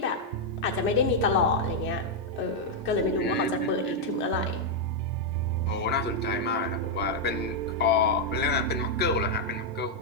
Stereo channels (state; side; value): normal; both; correlation -0.01